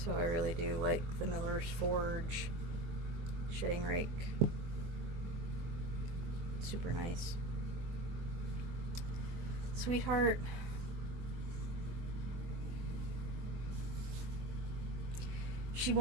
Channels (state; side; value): late; left; 24 ms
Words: I really do like the Miller's Forge shedding rake. Super nice. Sweetheart. She